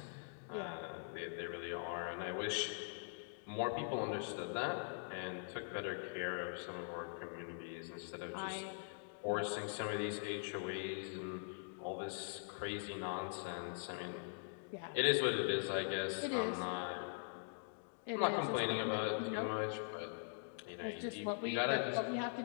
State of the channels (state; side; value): silent; right; digital silence